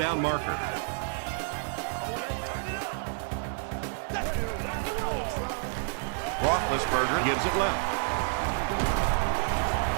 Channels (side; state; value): left; silent; 58 dB below the other